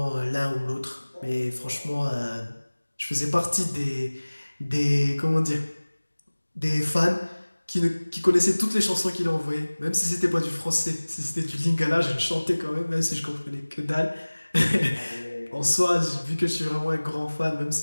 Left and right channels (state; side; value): inverted; both; correlation -1.00